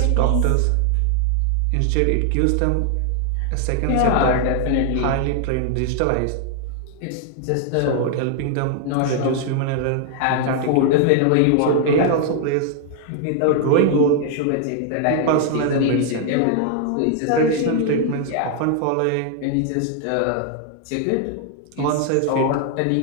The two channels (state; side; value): different; both; correlation 0.00